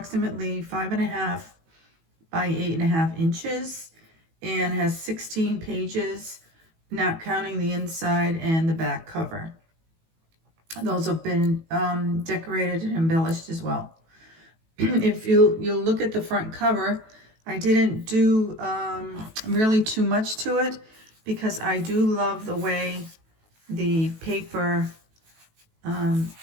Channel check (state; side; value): late; left; 18 ms